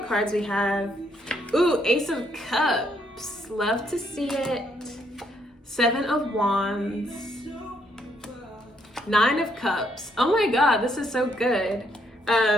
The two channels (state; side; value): normal; both; correlation 0.72